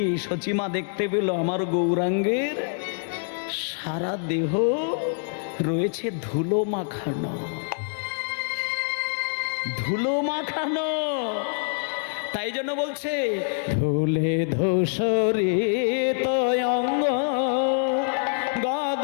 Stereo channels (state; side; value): silent; right; 61 dB below the other